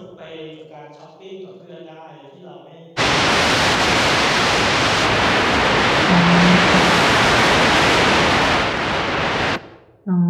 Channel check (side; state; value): both; identical; correlation 1.00